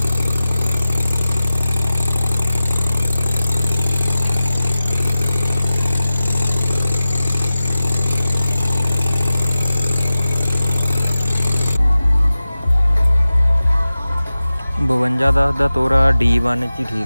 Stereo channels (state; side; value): inverted; both; correlation -0.95